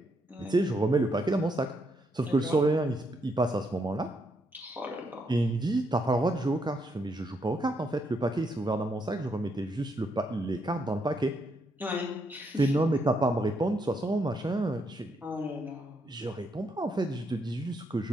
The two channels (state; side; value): normal; both; correlation 0.77